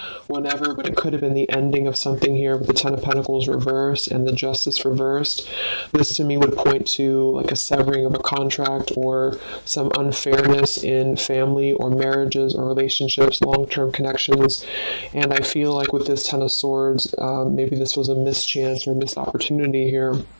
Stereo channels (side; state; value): both; inverted; correlation -1.00